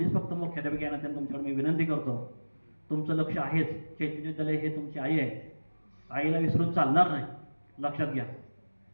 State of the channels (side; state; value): both; inverted; correlation -1.00